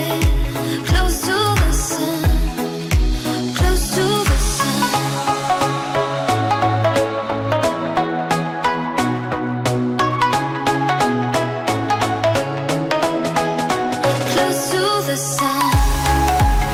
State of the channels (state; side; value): identical; both; correlation 1.00